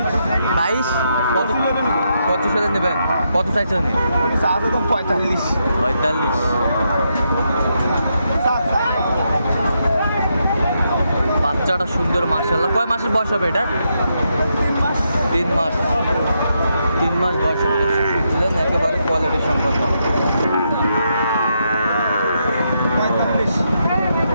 22। কত 25 হলে নেবেন? কত চাইছেন উনি? সাথে তো 45। 45। বাচ্চাটা সুন্দর মাশাআল্লাহ। কয় মাসের বয়স হবে এটা? 3 মাস। 3 মাস বয়স হবে। শুনছিলেন একেবারে কোয়ালিটি সম্পন্ন।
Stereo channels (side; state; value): both; inverted; correlation -0.81